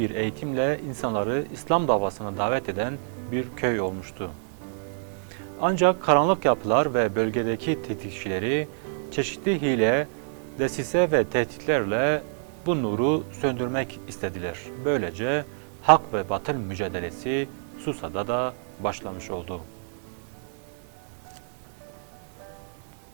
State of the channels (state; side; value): silent; left; digital silence